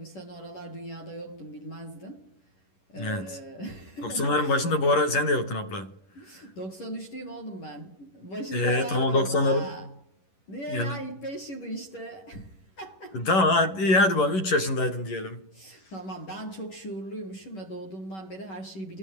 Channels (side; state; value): right; late; 11 ms